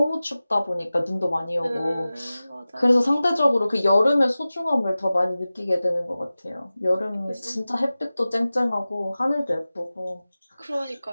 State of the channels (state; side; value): inverted; both; correlation -0.96